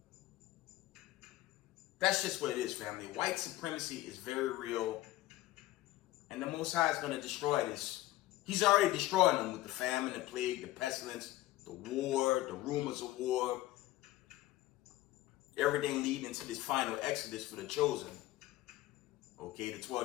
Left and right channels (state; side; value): quieter; right; 16.6 dB